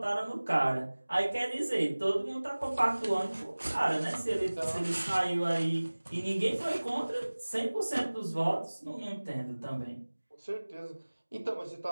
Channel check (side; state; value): both; inverted; correlation -1.00